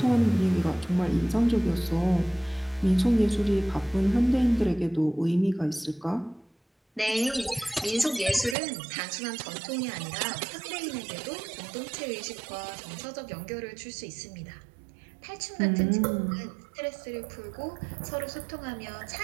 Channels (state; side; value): drops out; left; at 8.6 s